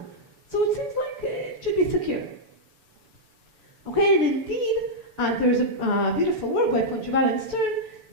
So it seems like it should be secure. Okay, and indeed, there's a beautiful work by Poncheval and Stern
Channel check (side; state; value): left; late; 7.0 ms